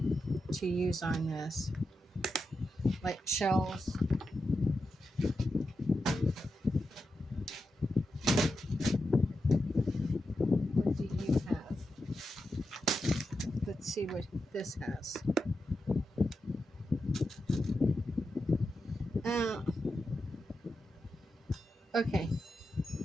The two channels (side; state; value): both; normal; correlation 0.88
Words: to use on this, like shells. What do you have? Let's see what this has. Uh, okay.